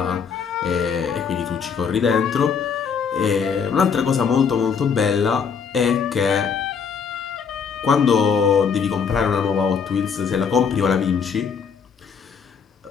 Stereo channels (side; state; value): right; quieter; 6.4 dB